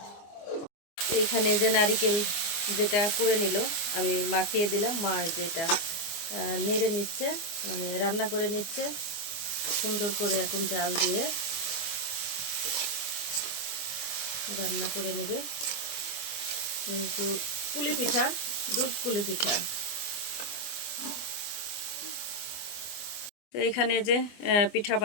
এখানে যে নারকেল যেটা করে নিল আমি মাখিয়ে দিলাম, মা যেটা নেড়ে নিচ্ছে, মানে রান্না করে নিচ্ছে সুন্দর করে। এখন জাল দিয়ে রান্না করে নেবে। কিন্তু পুলি পিঠা, দুধ পুলি পিঠা। তো এখানে যে পিঠা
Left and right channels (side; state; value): right; late; 24 ms